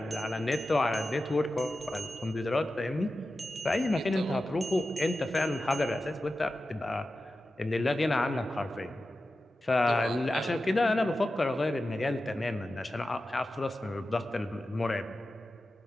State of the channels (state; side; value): normal; both; correlation 0.93